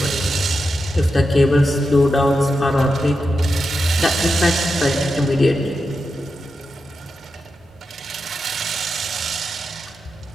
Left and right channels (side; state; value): both; normal; correlation 0.88